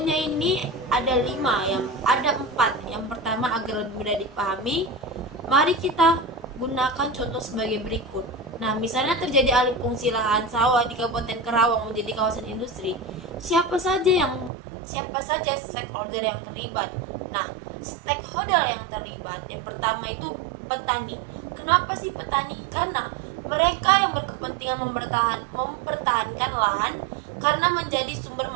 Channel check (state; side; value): drops out; left; at 14.5 s